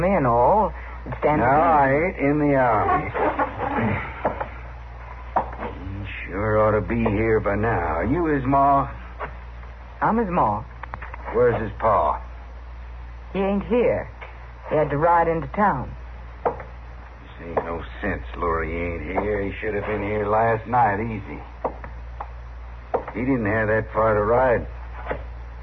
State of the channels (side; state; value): both; identical; correlation 1.00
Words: and all, it'd stand No, to reason. I ain't in the Army. He sure ought to be here by now. Are you his ma? I'm his ma. Where's his pa? He ain't here. He had to ride into town. This ain't no sense, Lurie. He ain't here. He should have been here last night, easy. He didn't have that far to ride.